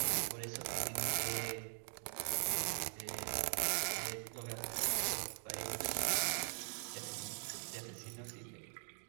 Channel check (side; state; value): left; silent; 50 dB below the other